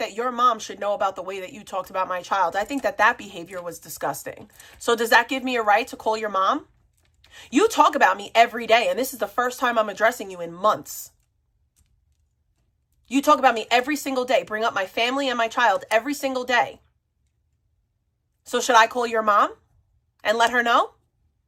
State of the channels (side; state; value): both; identical; correlation 1.00